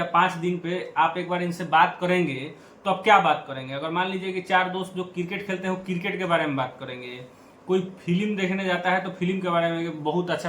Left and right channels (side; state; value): both; identical; correlation 1.00